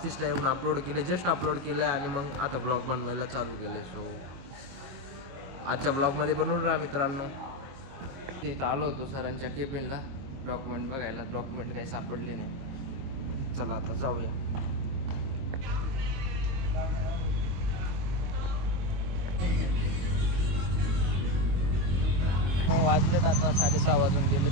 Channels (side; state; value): left; late; 22 ms